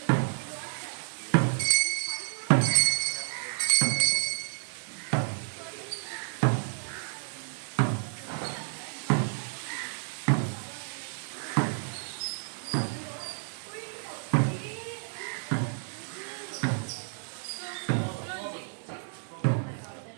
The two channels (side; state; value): left; silent; 57 dB below the other